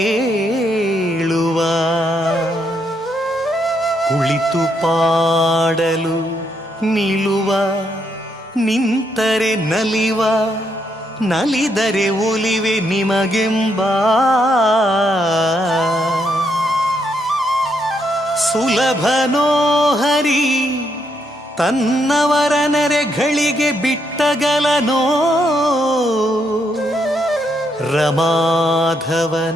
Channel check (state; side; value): normal; both; correlation 0.77